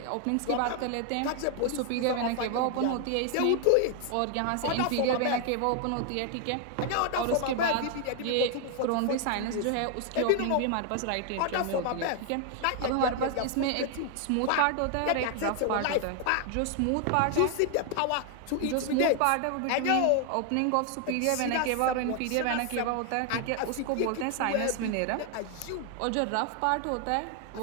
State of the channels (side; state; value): both; different; correlation 0.00